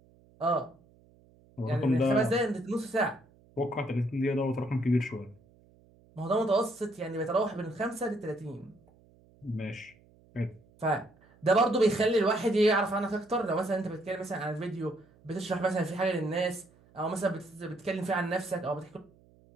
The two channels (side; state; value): right; noise; hum, 29 dB below the sound